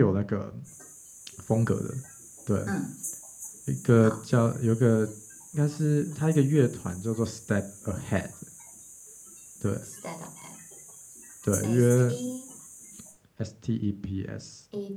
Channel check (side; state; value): both; identical; correlation 1.00